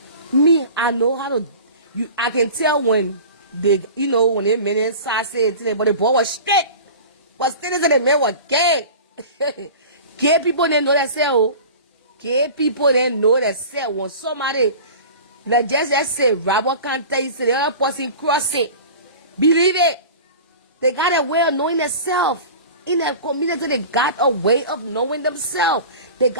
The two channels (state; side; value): inverted; both; correlation -0.37